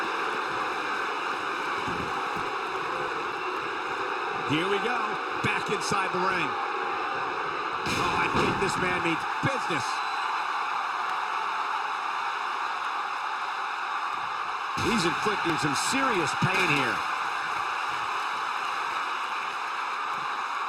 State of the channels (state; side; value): identical; both; correlation 1.00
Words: Here we go, back inside the ring. Oh, I think this man means business. He's inflicting some serious pain here.